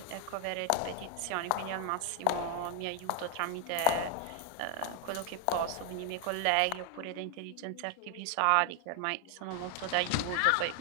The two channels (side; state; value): both; different; correlation 0.00